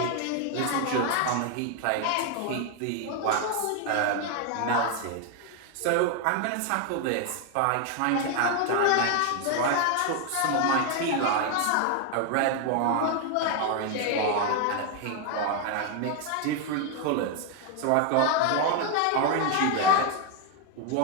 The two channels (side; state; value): both; different; correlation 0.01